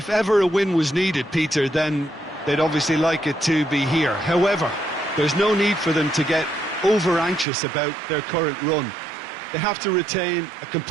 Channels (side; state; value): left; drops out; at 7.5 s